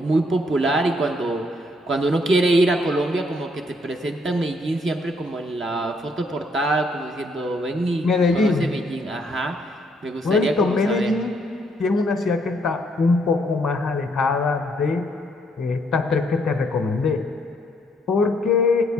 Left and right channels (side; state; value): both; normal; correlation 0.70